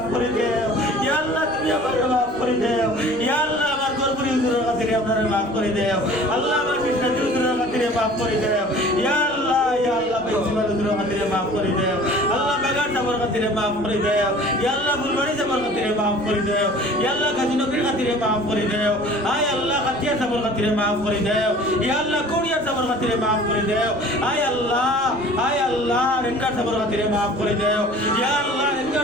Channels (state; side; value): noise; left; rumble, 25 dB below the sound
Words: করে দাও ইয়া আল্লাহ তুমি আমারে maaf করে দাও ইয়া আল্লাহ আমার গর্বরি হুজুরের খাতিরে আমারে maaf করে দাও আল্লাহ আমার কৃষ্ণ হুজুরের খাতিরে maaf করে দাও ইয়া আল্লাহ প্রিন্সিপাল হুজুরের খাতিরে maaf করে দাও আল্লাহ বেগার সাহেবের খাতিরে maaf করে দাও ইয়া আল্লাহ ফুলবাড়ি সাহেবের খাতিরে maaf করে দাও ইয়া আল্লাহ গাজী নগরীর খাতিরে maaf করে দাও আয় আল্লাহ খাতিয়া সাহেবের খাতিরে maaf করে দাও ইয়া আল্লাহ কোরিয়া সাহেবের খাতিরে maaf করে দাও আয় আল্লাহ রেঙ্গার সাহেবের খাতিরে maaf করে দাও ইয়া আল্লাহ